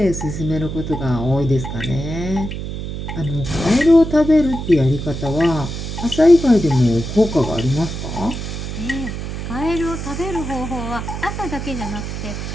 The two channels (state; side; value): noise; right; hum, 6 dB below the sound